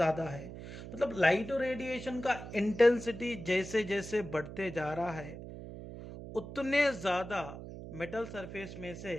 है। मतलब लाइट रेडिएशन का इंटेंसिटी जैसे जैसे बढ़ते जा रहा है उतने ज्यादा मेटल सरफेस में से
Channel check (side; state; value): right; noise; hum, 11 dB below the sound